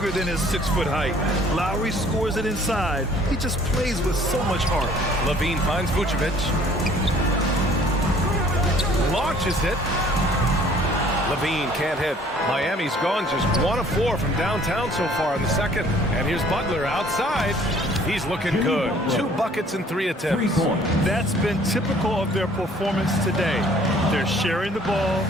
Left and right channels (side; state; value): both; normal; correlation 0.56